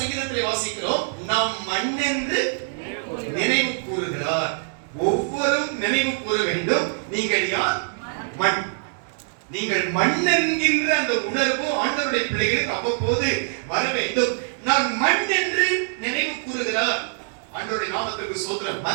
வாசிக்கிறோம், நாம் மண் என்று நினைவு கூறுகிறார். ஒவ்வொருவரும் நினைவு கூற வேண்டும், நீங்கள் யார்? மண். நீங்கள் மண் என்கின்ற அந்த உணர்வு ஆண்டவருடைய பிள்ளைகளுக்கு அவ்வப்போது வர வேண்டும். நான் மண் என்று நினைவு கூறுகிறார். ஆண்டவருடைய நாமத்திற்கு ஸ்தோத்திரம்.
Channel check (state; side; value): silent; left; digital silence